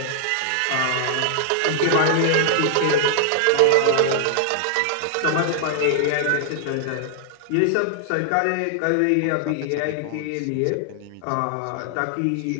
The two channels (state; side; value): different; both; correlation 0.00